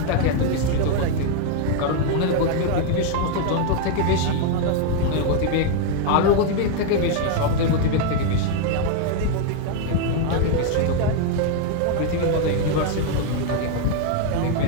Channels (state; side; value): different; both; correlation 0.00